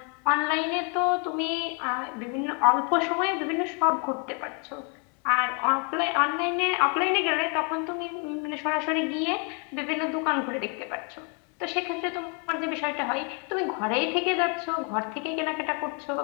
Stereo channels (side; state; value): right; quieter; 37.3 dB